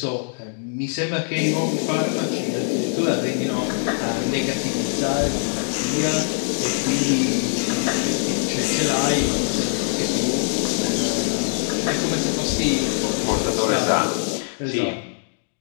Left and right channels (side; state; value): right; silent; 58 dB below the other